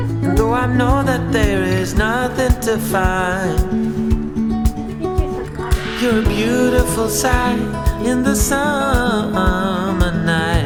and though I know that there is nothing to find, you're a beautiful sight in the summer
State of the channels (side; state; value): both; identical; correlation 1.00